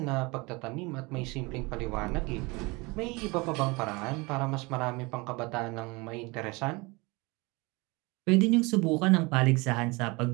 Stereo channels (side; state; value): left; quieter; 25.7 dB